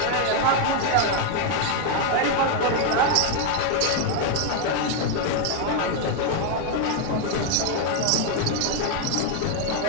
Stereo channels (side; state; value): both; different; correlation 0.01